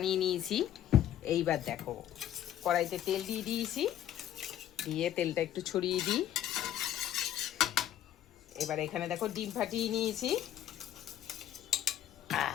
নিয়েছি। এইবার দেখো কড়াইতে তেল দিয়ে দিয়েছি, দিয়ে তেলটা একটু ছড়িয়ে দিই। এবার এখানে দেখো ডিম ফাটিয়ে নিয়েছি।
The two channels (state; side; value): quieter; right; 11.4 dB